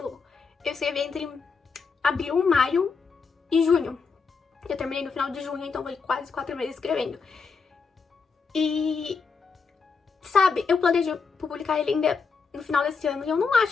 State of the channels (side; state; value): right; quieter; 5.2 dB